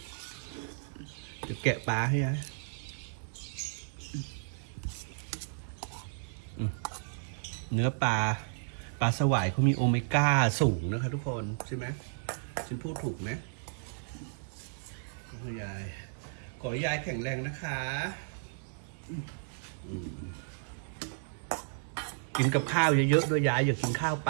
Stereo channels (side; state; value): left; silent; digital silence